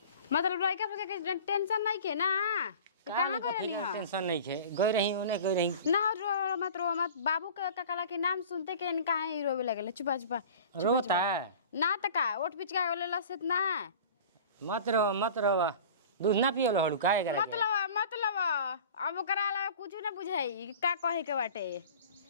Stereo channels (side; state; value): both; inverted; correlation -0.41